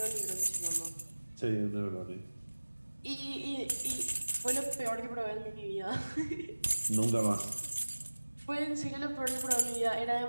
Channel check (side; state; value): both; inverted; correlation -1.00